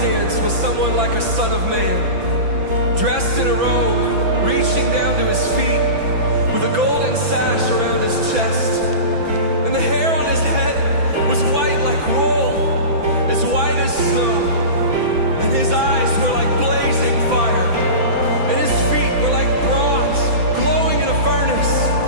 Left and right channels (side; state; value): left; late; 6.0 ms